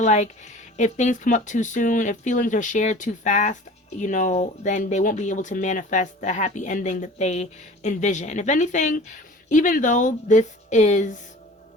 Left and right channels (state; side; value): normal; both; correlation 0.42